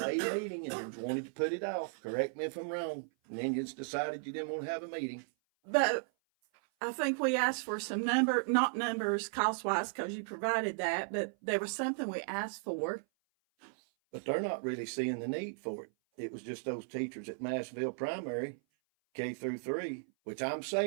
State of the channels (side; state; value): left; silent; 54 dB below the other